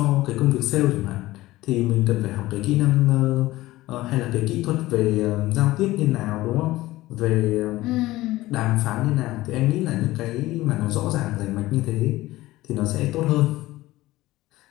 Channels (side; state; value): right; quieter; 17.5 dB